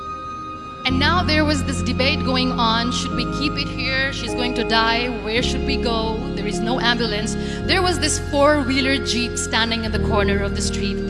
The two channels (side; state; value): both; identical; correlation 1.00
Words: And now there was this debate going on. Should we keep it here? She's going to die. Where should we go? There is no ambulance. There was this 4-wheeler Jeep standing in the corner of the street.